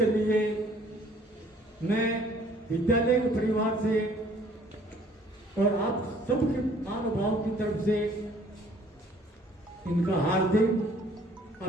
लिए मैं विद्यालय के परिवार से और आप सबके महानुभाव की तरफ से इनका हार्दिक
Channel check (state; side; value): normal; both; correlation 0.58